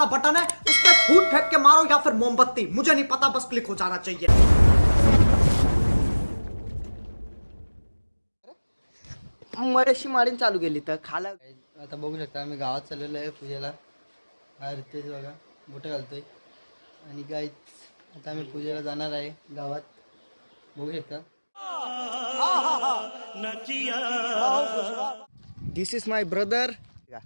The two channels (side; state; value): both; inverted; correlation -1.00